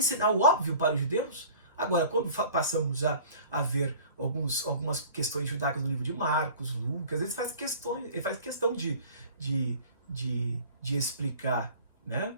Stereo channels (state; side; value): inverted; both; correlation -0.45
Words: o óbvio para os judeus? Agora, quando passamos a ver algumas questões judaicas no livro de Marcos, Lucas, ele faz questão de explicar, né?